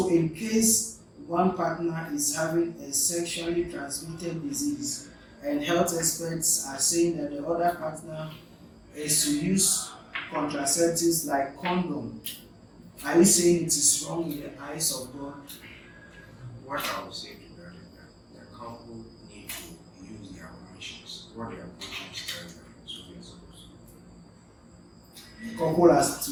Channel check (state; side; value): identical; both; correlation 1.00